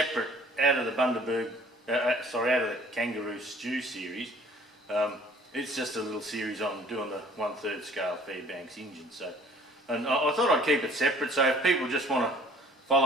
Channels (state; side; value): normal; both; correlation 0.54